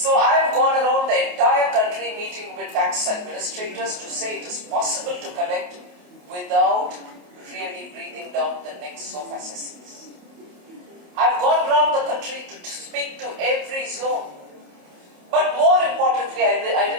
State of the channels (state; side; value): late; left; 28 ms